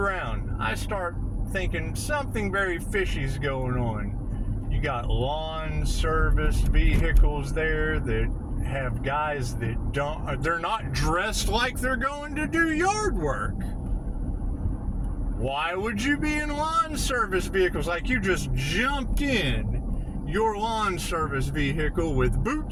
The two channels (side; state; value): both; identical; correlation 1.00